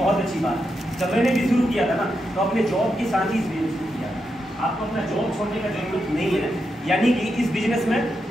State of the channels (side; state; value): both; normal; correlation 0.85